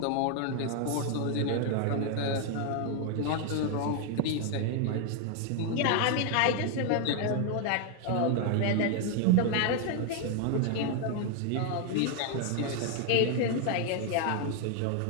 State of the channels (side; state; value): both; different; correlation 0.01